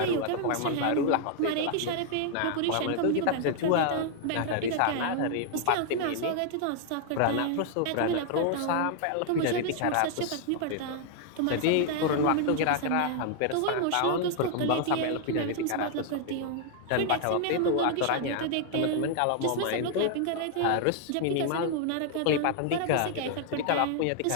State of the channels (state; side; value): different; both; correlation 0.00